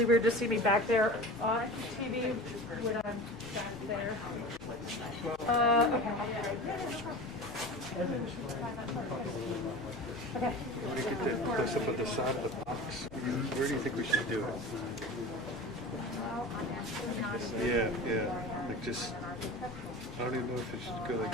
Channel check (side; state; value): left; noise; hum, 22 dB below the sound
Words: weird to see me back there on TV when I'm back there. Okay. Okay. You want to get that close up at the side of the box? Where do you think we should do it? Yeah. Like just, I don't even know if it should go like